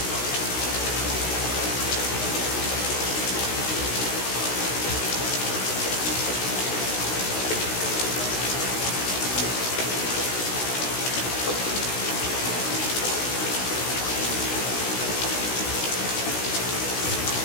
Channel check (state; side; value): late; right; 16 ms